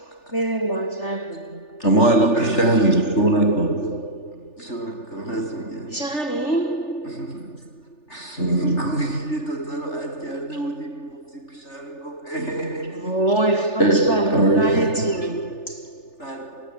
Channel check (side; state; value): right; late; 3.4 ms